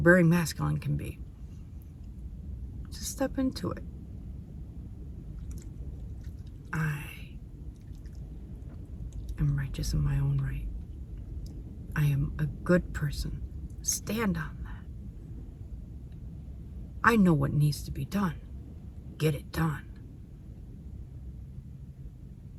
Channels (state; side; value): identical; both; correlation 1.00